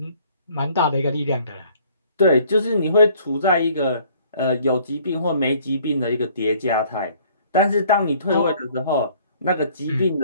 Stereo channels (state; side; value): inverted; both; correlation -0.58